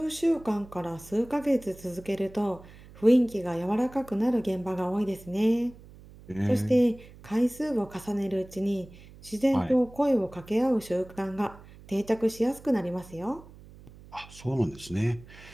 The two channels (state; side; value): noise; right; hum, 20 dB below the sound